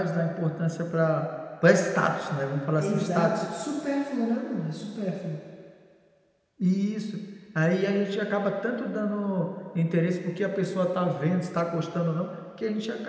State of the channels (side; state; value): both; identical; correlation 1.00